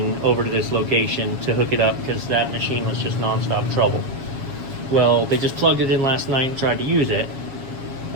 over to this location to hook it up because that machine was just nonstop trouble. Well, they just plugged it in last night and tried to use it.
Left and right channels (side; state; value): left; late; 7.4 ms